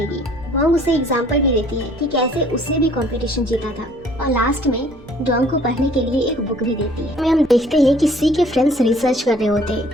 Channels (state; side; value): normal; both; correlation 0.56